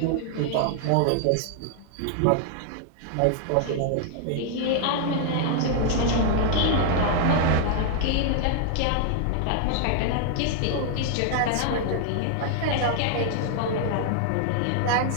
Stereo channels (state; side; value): different; both; correlation 0.00